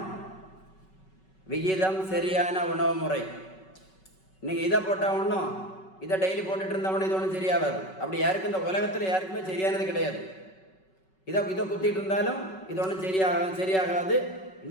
விகிதம் சரியான உணவு முறை. நீங்கள் இதை போட்டால் ஒன்றும், இதை டெய்லி போட்டுட்டு இருந்தவொன்னே இது ஒன்றும் சரியாகாது. அப்படி யாருக்கும் இந்த உலகத்தில் யாருக்குமே சரியானது கிடையாது. இதை குத்திட்டு இருந்தாலும் இது ஒன்றும் சரியாகாது.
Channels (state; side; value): late; right; 5.3 ms